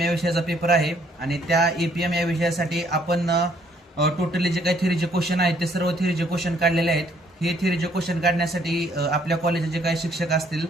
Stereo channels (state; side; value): normal; both; correlation 0.66